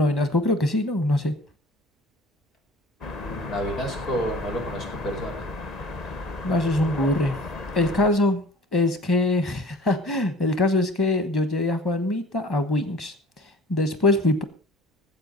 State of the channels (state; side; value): normal; both; correlation 0.46